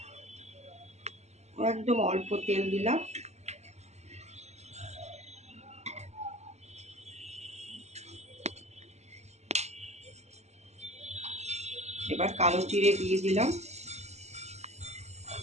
একদম অল্প তেল দিলাম। এবার কালো জিরে দিয়ে দিলাম,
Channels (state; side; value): late; left; 0.32 ms